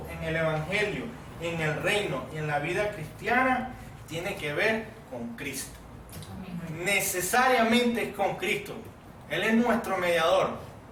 en el Evangelio, en el reino y en la vida cristiana tiene que ver con Cristo. Necesariamente es con Cristo. Él es nuestro mediador.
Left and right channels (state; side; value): identical; both; correlation 1.00